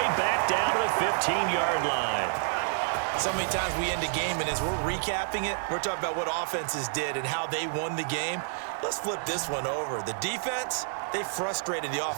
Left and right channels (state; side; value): silent; left; digital silence